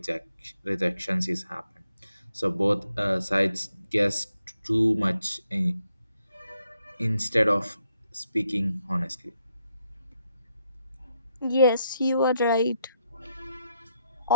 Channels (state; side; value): inverted; both; correlation -0.79